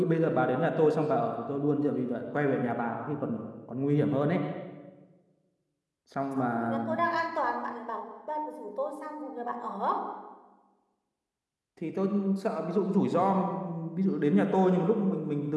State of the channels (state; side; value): identical; both; correlation 1.00